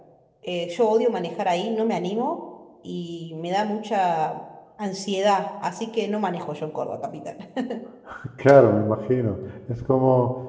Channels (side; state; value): both; identical; correlation 1.00